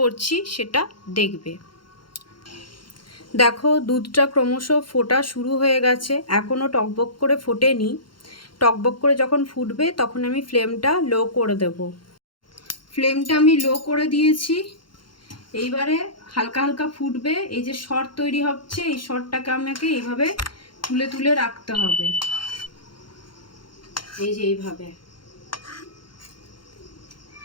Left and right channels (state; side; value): late; right; 0.72 ms